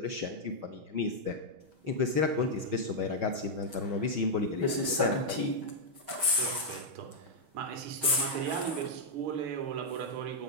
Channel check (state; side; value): late; left; 6.3 ms